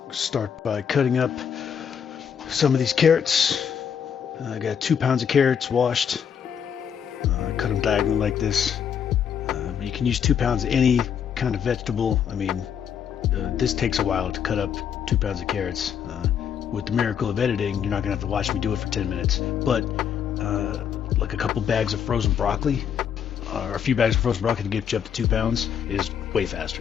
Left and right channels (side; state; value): right; quieter; 8.0 dB